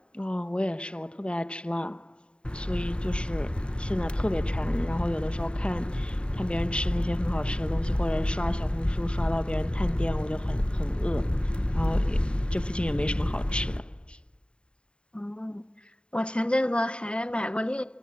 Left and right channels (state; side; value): late; right; 0.052 ms